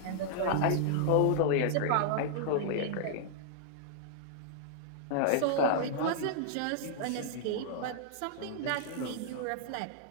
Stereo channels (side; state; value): both; different; correlation -0.01